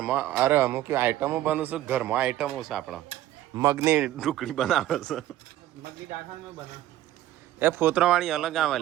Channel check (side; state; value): left; quieter; 13.8 dB